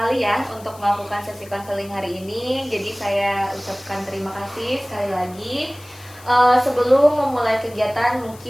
ya untuk melakukan sesi konseling hari ini. Jadi saya ucapkan terima kasih sekali lagi. Sebelum memulai kegiatan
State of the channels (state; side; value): noise; left; hiss, 22 dB below the sound